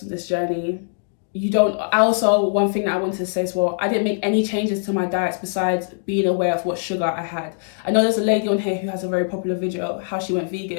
on this journey. one thing that I wanted to say as well, I didn't make any changes to my diets besides being aware of what sugar I had. I know there's a lady on here who has a very popular video, how she went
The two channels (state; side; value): silent; right; digital silence